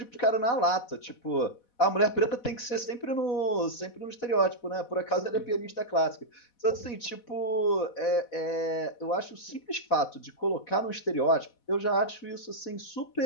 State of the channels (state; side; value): late; right; 4.1 ms